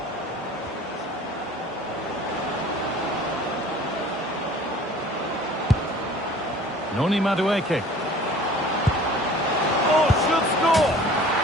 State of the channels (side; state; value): both; normal; correlation 0.47